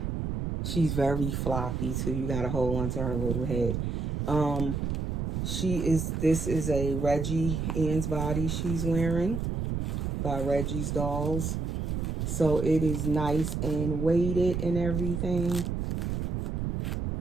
she's very floppy too. You gotta hold on to her little head. This is a Reggie Ann's body she's wearing by Reggie's Dolls. So it is nice and weighted and everything.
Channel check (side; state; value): right; noise; rumble, 1 dB below the sound